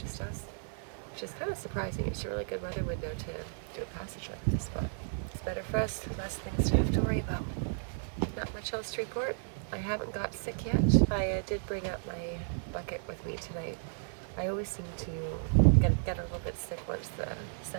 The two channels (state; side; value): silent; left; digital silence